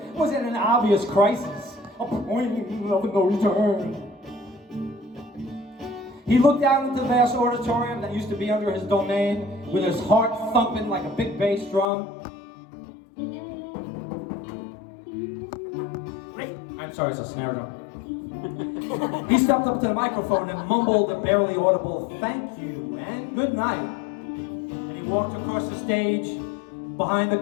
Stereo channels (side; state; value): right; drops out; at 11.9 s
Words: was at an obvious crisis, a point of no return. He looked out into the vast auditorium that used to be under his domain, with his heart thumping like a big bass drum. I'm sorry, it's a snare drum. He stepped up to the microphone and mumbled a barely audible "thank you" and "good night." And he walked across the stage, behind the